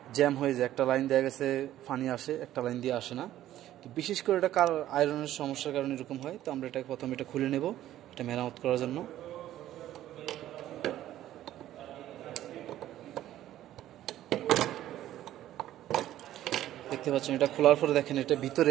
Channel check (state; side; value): quieter; left; 13.1 dB